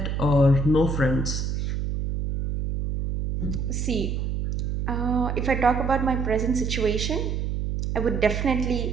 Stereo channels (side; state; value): right; noise; hum, 1 dB below the sound